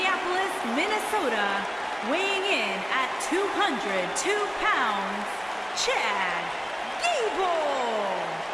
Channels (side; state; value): both; identical; correlation 1.00